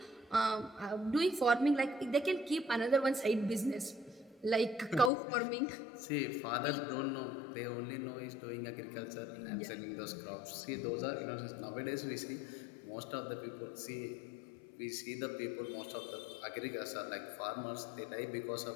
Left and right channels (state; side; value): drops out; right; at 5.1 s